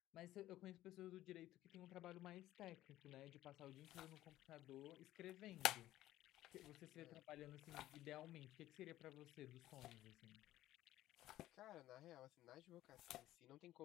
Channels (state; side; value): quieter; right; 14.5 dB